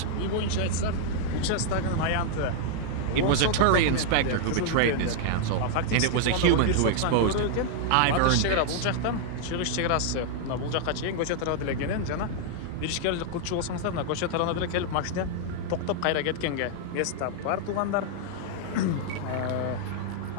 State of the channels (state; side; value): different; both; correlation -0.01